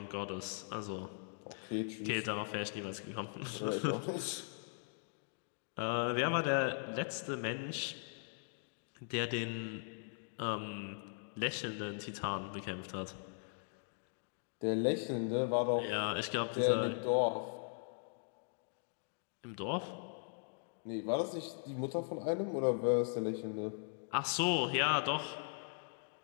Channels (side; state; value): right; silent; digital silence